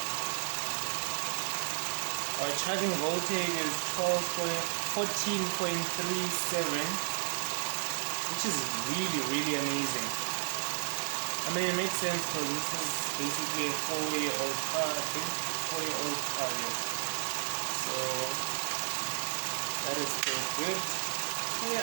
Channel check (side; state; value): left; quieter; 38.8 dB